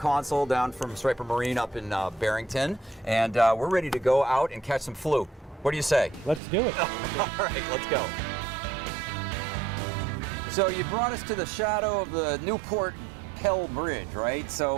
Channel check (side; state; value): left; drops out; at 6.4 s